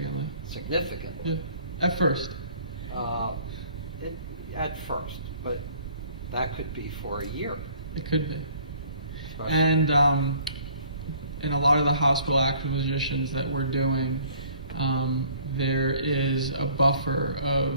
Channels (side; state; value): both; inverted; correlation -0.56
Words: Significantly. Yeah. At first. At first, but that could be for a year. It could be. Especially. And in a lot of the hospital acquisitions that we're doing, there is a buffer